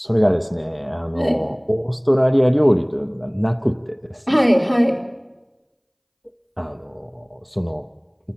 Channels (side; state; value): both; identical; correlation 1.00